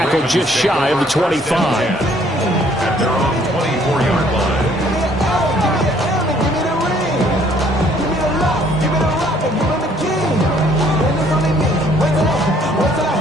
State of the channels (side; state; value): both; normal; correlation 0.62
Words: just shy of the 25. At their own 24-yard line.